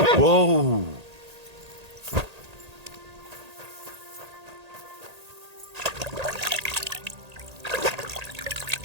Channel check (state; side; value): late; left; 1.8 ms